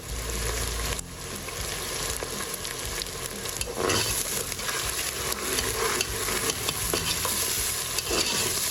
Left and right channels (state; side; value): identical; both; correlation 1.00